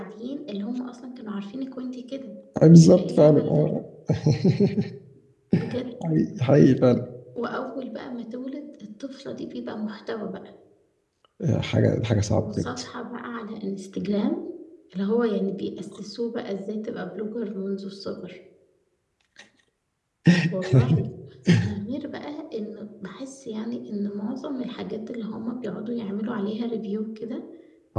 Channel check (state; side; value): identical; both; correlation 1.00